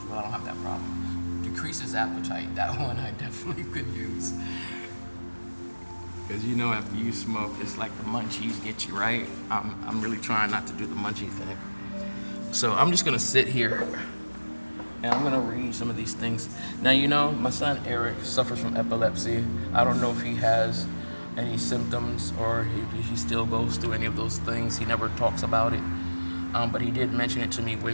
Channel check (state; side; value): inverted; both; correlation -1.00